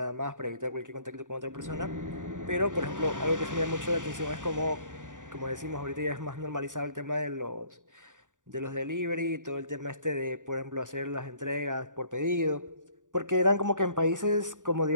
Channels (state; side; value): late; left; 0.87 ms